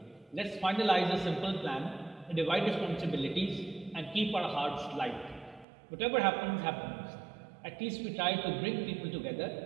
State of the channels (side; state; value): left; drops out; at 5.7 s